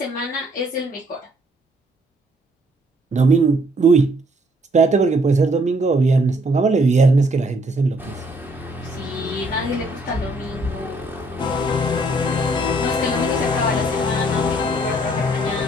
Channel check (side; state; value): both; normal; correlation 0.66